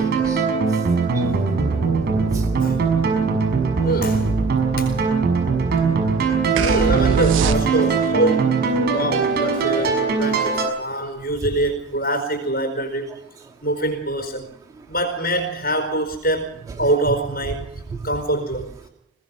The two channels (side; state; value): left; quieter; 3.5 dB